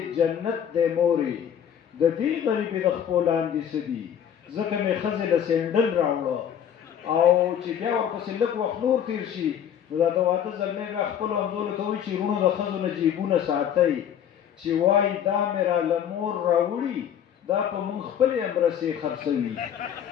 جنت دی مورې د دې غریبې د خپو لاندې څه دي ځکه مې ښځې له سینډل راوړه او چې بیا ورپسې لږ وخت نور تېر شي نو دا د واده زلمی بیا خپلو همزولو ته وایي چې وروڼو د ښځو نه جیبونه ساتئ چې وایي دا مې راله مور راوړي دا په مونږ خپلې امرسې خرڅوي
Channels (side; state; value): right; quieter; 9.1 dB